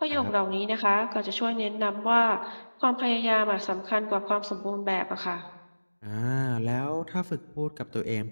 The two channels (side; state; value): both; inverted; correlation -1.00